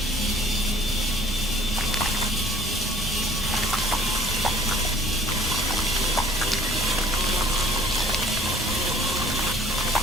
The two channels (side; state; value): both; normal; correlation 0.56